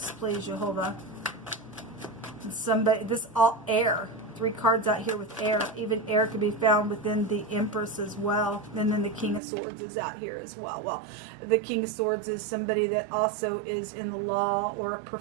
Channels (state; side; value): drops out; left; at 9.4 s